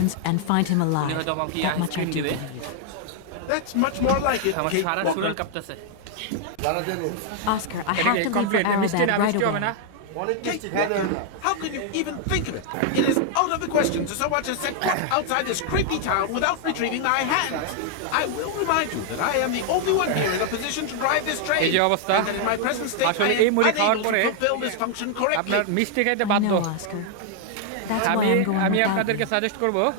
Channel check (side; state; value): both; different; correlation 0.00